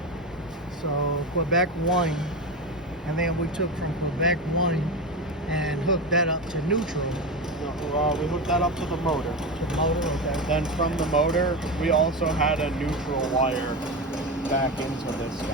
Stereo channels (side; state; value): both; normal; correlation 0.20